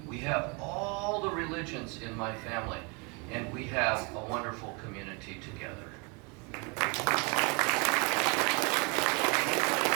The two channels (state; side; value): quieter; left; 30.1 dB